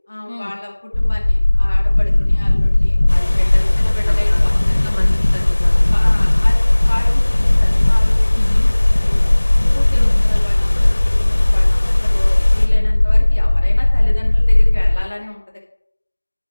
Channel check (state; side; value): inverted; both; correlation -1.00